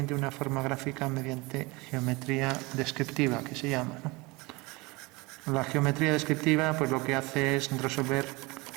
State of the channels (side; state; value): left; quieter; 24.5 dB